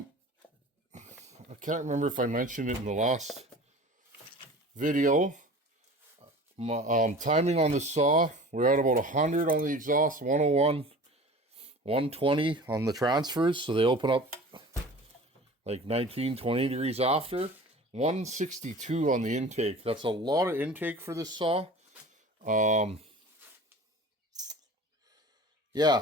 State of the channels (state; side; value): normal; both; correlation 0.40